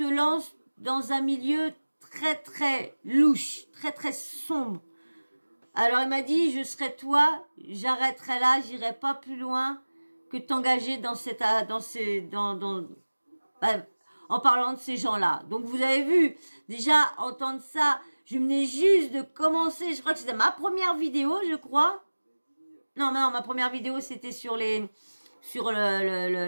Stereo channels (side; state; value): both; inverted; correlation -1.00